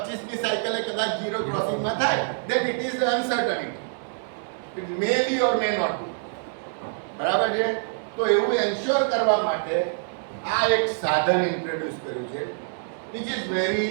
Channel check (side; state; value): left; silent; digital silence